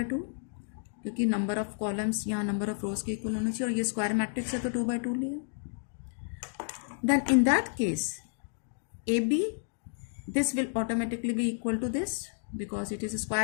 2, क्योंकि number of columns यहाँ number of रोज के equal होना चाहिए और ये square matrix है तो 2 by 2 लिया. Then in that case AB, this will automatically be equal to this because it is a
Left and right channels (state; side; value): silent; right; digital silence